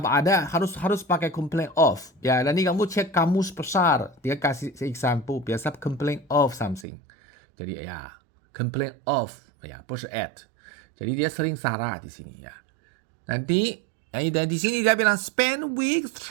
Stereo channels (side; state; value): left; drops out; at 6.9 s